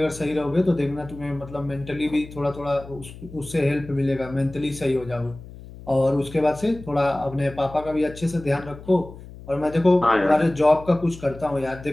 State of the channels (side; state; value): left; noise; hum, 16 dB below the sound